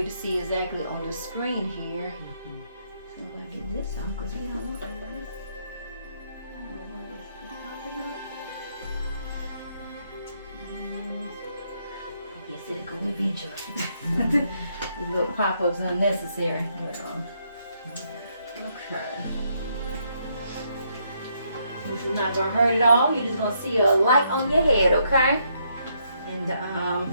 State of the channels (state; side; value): inverted; both; correlation -0.74